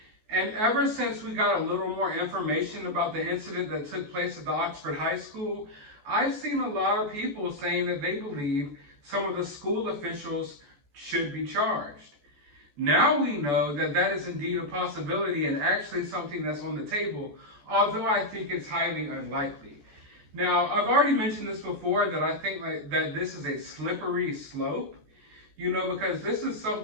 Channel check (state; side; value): late; left; 14 ms